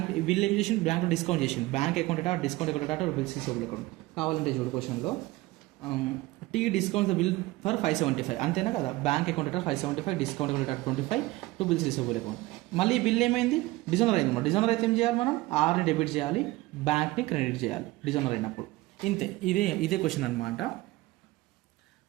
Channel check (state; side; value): quieter; left; 19.6 dB